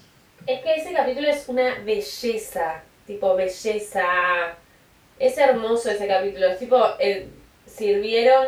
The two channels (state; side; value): identical; both; correlation 1.00